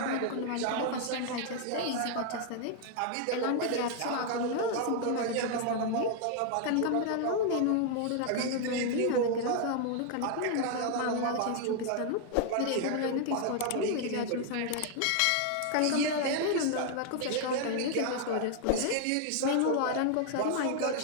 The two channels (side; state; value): both; different; correlation 0.00